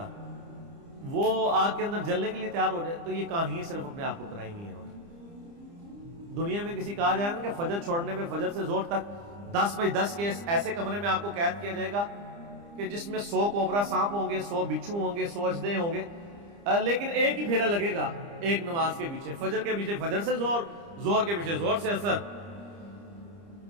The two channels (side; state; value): left; late; 30 ms